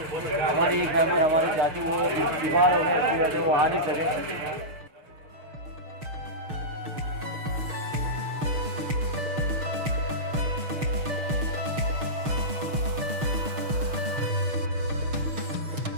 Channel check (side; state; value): left; late; 6.5 ms